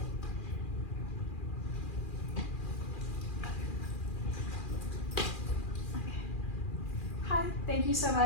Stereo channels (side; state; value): right; late; 2.4 ms